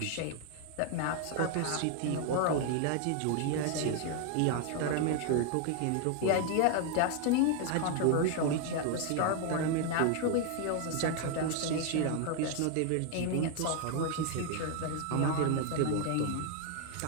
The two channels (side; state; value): both; different; correlation 0.00